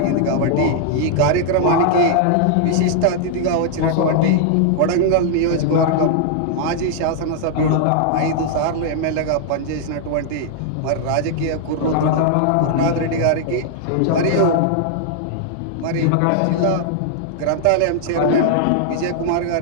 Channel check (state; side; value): different; both; correlation -0.01